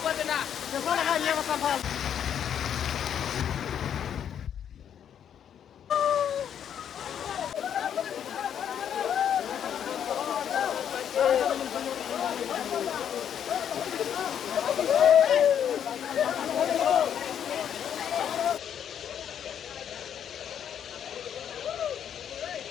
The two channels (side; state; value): right; quieter; 9.1 dB